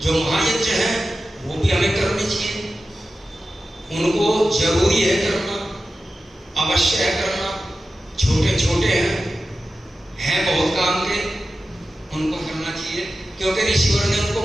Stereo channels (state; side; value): normal; both; correlation 0.93